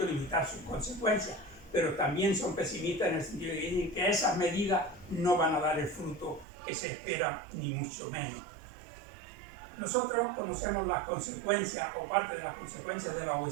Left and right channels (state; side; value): drops out; left; at 6.5 s